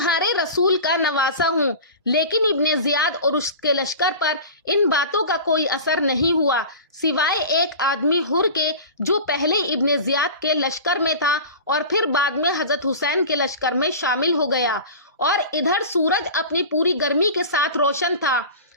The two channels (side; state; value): both; inverted; correlation -0.34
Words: رسول کا نواسا ہوں۔ لیکن ابن زیاد اور اس کے لشکر پر ان باتوں کا کوئی اثر نہیں ہوا، سوائے ایک آدمی حر کے جو پہلے ابن زیاد کے لشکر میں تھا اور پھر بعد میں حضرت حسین کے لشکر میں شامل ہو گیا۔ اور ادھر سورج اپنی پوری گرمی کے ساتھ روشن تھا۔